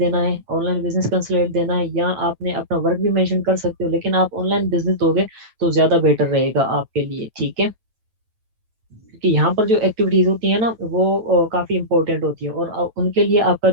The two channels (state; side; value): late; left; 9.1 ms